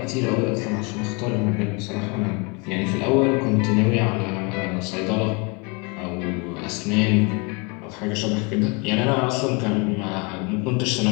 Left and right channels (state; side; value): quieter; right; 30.1 dB